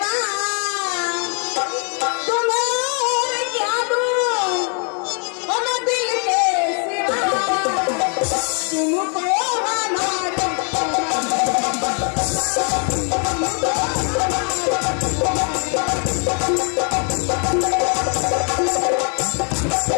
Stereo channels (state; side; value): quieter; right; 39.9 dB